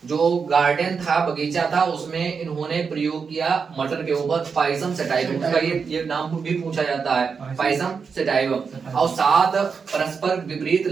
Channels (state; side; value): quieter; left; 5.6 dB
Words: जो गार्डन था, बगीचा था, उसमें इन्होंने प्रयोग किया मटर के ऊपर पाइसम सेटाइवम, उसका ये नाम भी पूछा जाता है, पाइसम सेटाइवम। और 7 परस्पर विपरीत